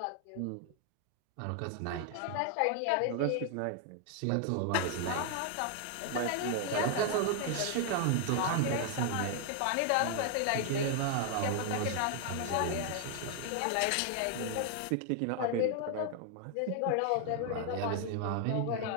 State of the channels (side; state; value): both; different; correlation 0.00